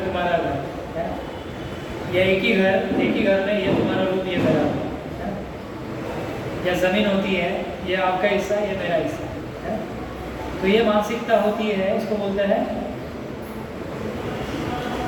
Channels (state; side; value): identical; both; correlation 1.00